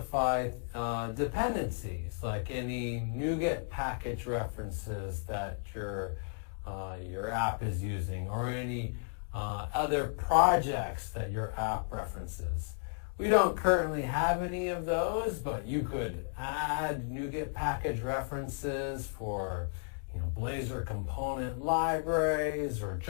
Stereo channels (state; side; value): silent; right; digital silence